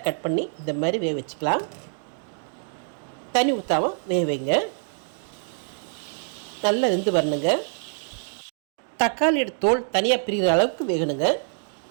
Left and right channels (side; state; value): left; silent; digital silence